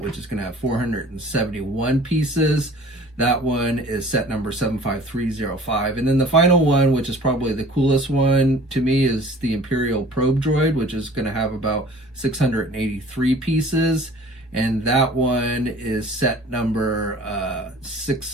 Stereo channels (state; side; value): normal; both; correlation 0.48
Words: which is going to have 471 pieces. That one is set number 75305. And then the final one, which is probably the coolest one to me, is the Imperial Probe Droid, which is going to have about 683 pieces. And that one is set number